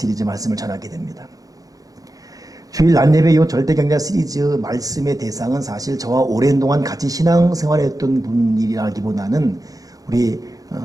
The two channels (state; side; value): late; left; 0.17 ms